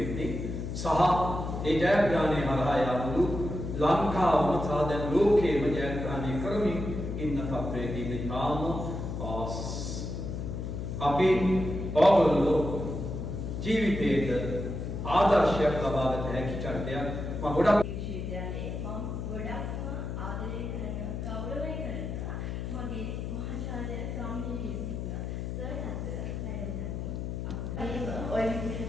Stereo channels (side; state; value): left; noise; hum, 5 dB below the sound